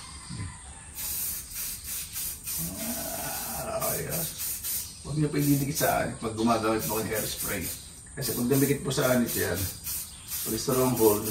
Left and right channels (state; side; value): identical; both; correlation 1.00